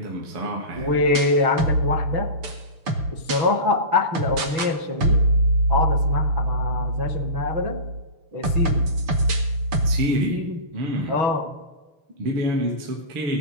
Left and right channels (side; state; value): left; late; 6.8 ms